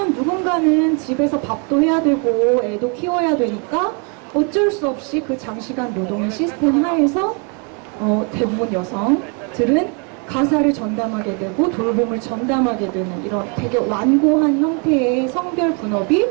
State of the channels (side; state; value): left; quieter; 36.3 dB